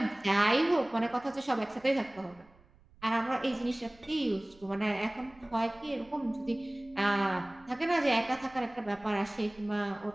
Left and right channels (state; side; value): noise; right; rumble, 28 dB below the sound